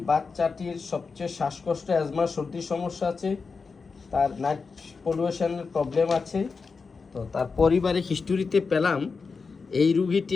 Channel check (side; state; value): right; quieter; 4.8 dB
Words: বাচ্চাটির সবচেয়ে শ্বাসকষ্ট, অ্যাজমা, সর্দির সমস্যা আছে, তার নাইট পলিউশনের প্রবলেম আছে। তো তার পরিবারে হিস্টোরিতে পেলাম এই